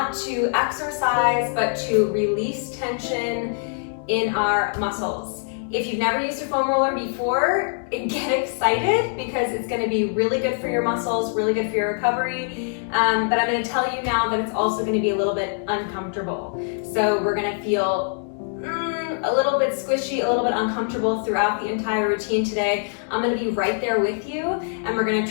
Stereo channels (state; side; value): silent; right; 63 dB below the other